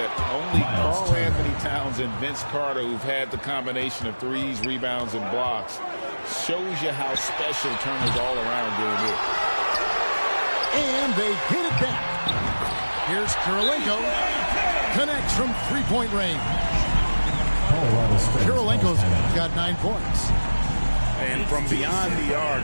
Only Karl Anthony Towns and Vince Carter, who've had the combination of threes, rebounds, and blocks, shows you how special Turner's all around doing this. And they get it back. Here's Kirilenko. Connects from 3-point range. Kirilenko's got 9 points. And from beyond the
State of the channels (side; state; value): both; inverted; correlation -1.00